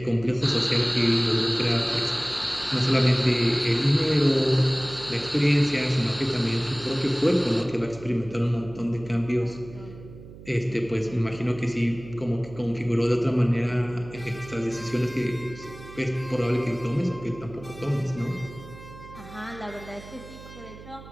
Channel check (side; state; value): right; noise; hum, 17 dB below the sound